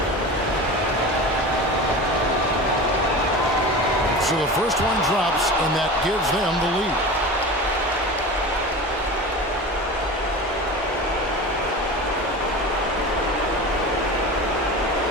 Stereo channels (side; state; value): both; normal; correlation 0.31